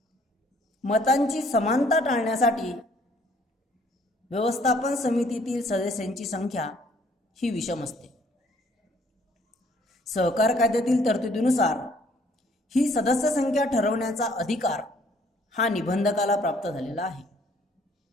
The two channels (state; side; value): normal; both; correlation 0.61